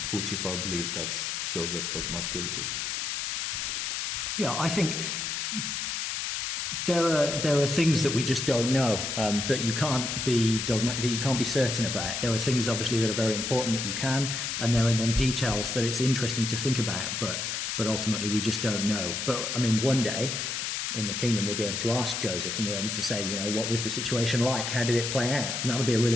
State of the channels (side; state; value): left; noise; hiss, 2 dB below the sound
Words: Potiphar believed that Joseph was not guilty. Yeah, I think there are things that we just don't know, that you can't be that you can't be certain about. There are things obviously that are very important that you can, and there are then details that it's interesting to think about, but ultimately we just don't know. But I mean, one day in the kingdom we'll be able to ask Joseph and we'll be able to say, you know, what was the situation like? How did it play out? And that'll be a